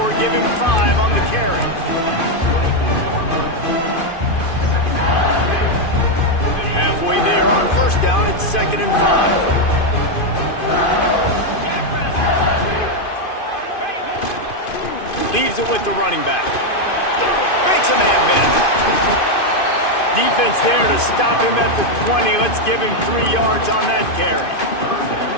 give him 5 on the carry. Halfway there on 1st down, it's 2nd and 5. Leaves it with the running back. Makes a man miss. Defense there to stop him at the 20. Let's give him 3 yards on that carry.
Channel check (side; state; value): right; late; 2.5 ms